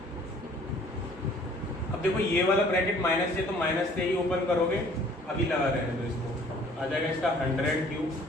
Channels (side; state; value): both; normal; correlation 0.55